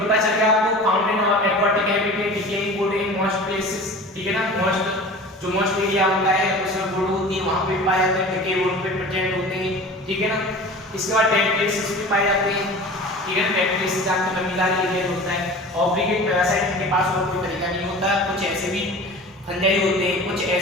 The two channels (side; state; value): both; normal; correlation 0.38